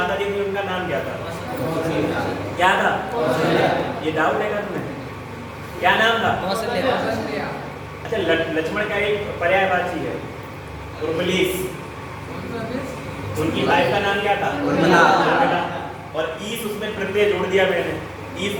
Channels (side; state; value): both; identical; correlation 1.00